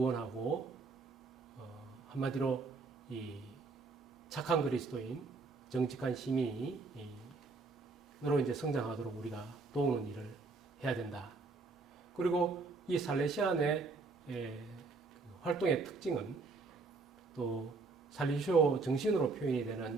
한마디로 이 착한 그리스도인, 정직한 시민으로 이제 성장하도록 우리가 도우는 일을 해야 된다. 그리고 이 살레시안의 활동의 특징은 또 살리시오 정신으로 표현이 되는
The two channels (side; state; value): left; quieter; 4.0 dB